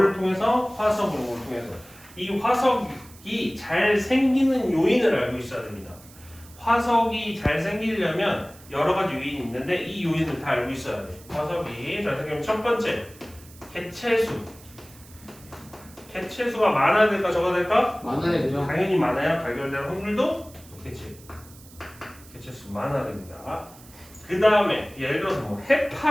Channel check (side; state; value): right; noise; hiss, 22 dB below the sound